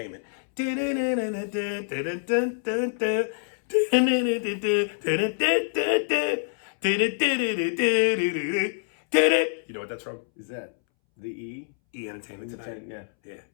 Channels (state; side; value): silent; right; 61 dB below the other